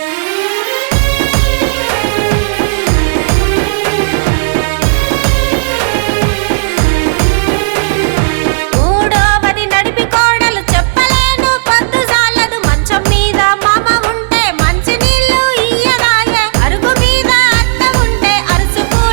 మూడోవది నడిపి కోడలు చెప్పలేను పొద్దు సాలదు మంచం మీద మామ ఉంటే మంచి నీళ్లు ఇయ్యరాయే అరుగు మీద అత్త ఉంటే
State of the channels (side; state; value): left; silent; digital silence